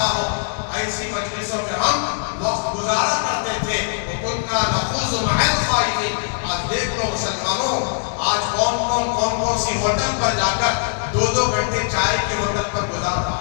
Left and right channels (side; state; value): right; silent; digital silence